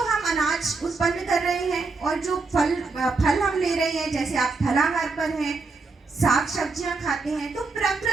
हम अनाज उत्पन्न कर रहे हैं, और जो फल हम ले रहे हैं, जैसे आप फलाहार पर हैं, साग सब्जियां खाते हैं, तो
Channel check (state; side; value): quieter; left; 4.0 dB